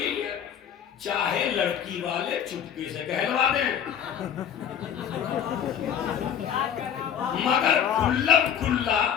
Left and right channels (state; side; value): quieter; right; 8.7 dB